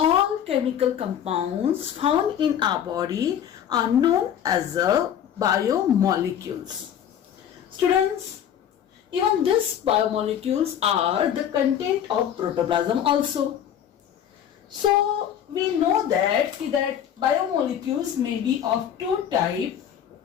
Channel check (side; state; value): right; quieter; 9.5 dB